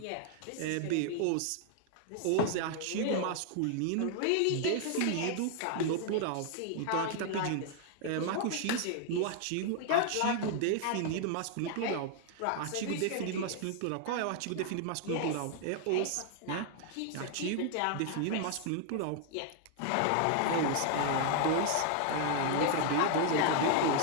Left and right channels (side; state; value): both; different; correlation 0.00